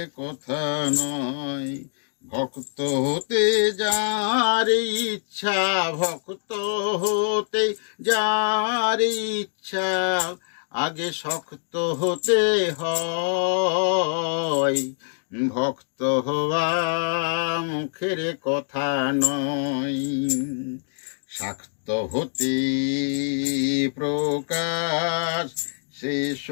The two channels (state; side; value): silent; right; digital silence